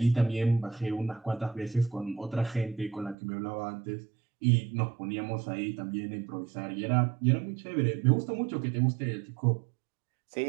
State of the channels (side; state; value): left; drops out; at 3.2 s